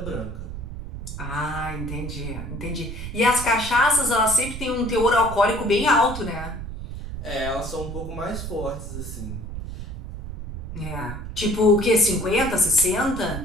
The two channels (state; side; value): noise; right; rumble, 8 dB below the sound